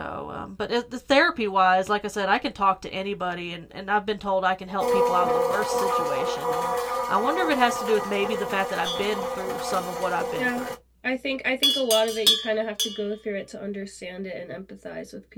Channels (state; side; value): identical; both; correlation 1.00